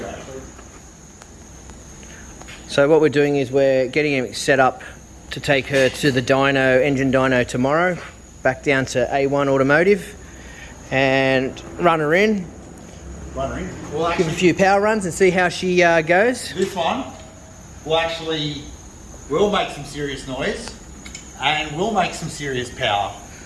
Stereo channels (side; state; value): both; identical; correlation 1.00